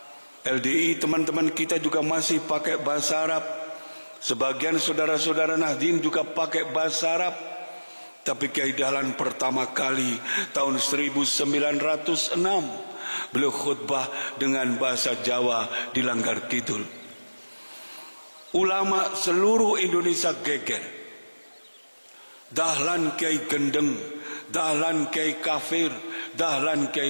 LDI teman-teman kita juga masih pakai bahasa Arab. Sebagian saudara-saudara Nahdien juga pakai bahasa Arab. Tapi Kyai Dahlan pertama kali tahun 1906 beliau khutbah dengan bahasa Jawa di Langgar Kidul. Ulama seluruh Indonesia geger. Dahlan Kyai Gendeng, Dahlan Kyai Kafir, Dahlan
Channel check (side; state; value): both; inverted; correlation -1.00